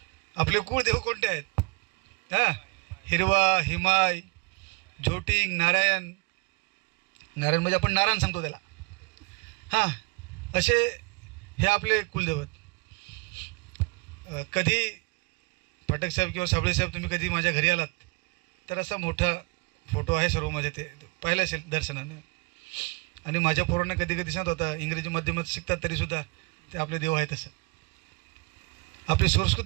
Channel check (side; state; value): left; quieter; 27.6 dB